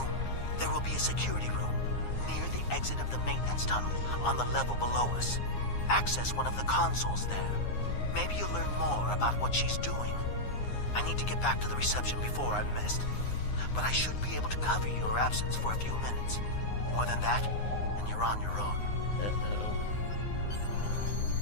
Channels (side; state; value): right; late; 9.6 ms